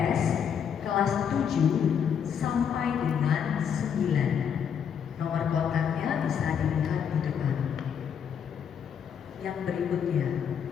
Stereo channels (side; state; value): right; quieter; 7.8 dB